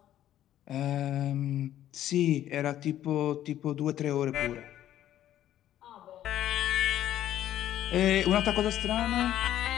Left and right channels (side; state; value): right; quieter; 12.1 dB